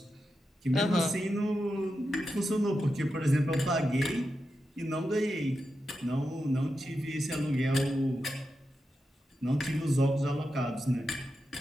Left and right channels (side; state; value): both; normal; correlation 0.89